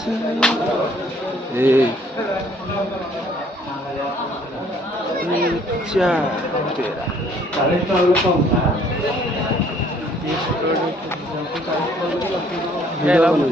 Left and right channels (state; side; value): normal; both; correlation 0.61